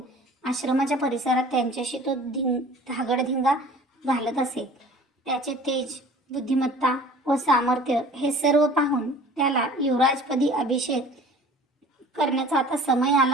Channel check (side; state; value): both; normal; correlation 0.46